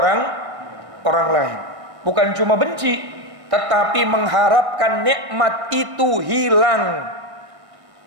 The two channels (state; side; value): late; left; 1.6 ms